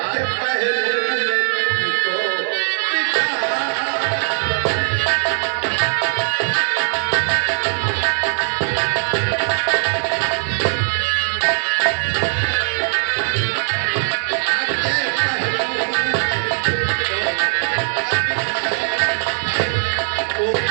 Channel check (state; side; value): silent; left; digital silence